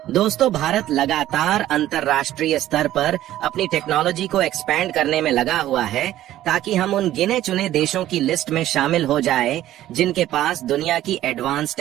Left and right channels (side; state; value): left; quieter; 13.6 dB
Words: दोस्तों, भारत लगातार अंतर्राष्ट्रीय स्तर पर अपनी टेक्नोलॉजी को एक्सपैंड करने में लगा हुआ है ताकि हम उन गिने चुने देशों की लिस्ट में शामिल हो जाए जिनके पास दुनिया की एडवांस